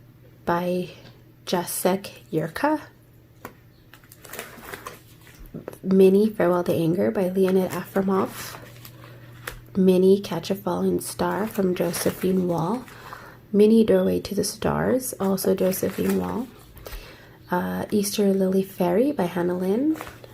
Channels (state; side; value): identical; both; correlation 1.00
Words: by Jacek Yurka. Mini Farewell to Anger by Leonid Afromov. Mini Catch a Falling Star from Josephine Wall. Mini Doorway to the Stars, also Josephine Wall. Easter Lily Fairy by Hannah Lynn.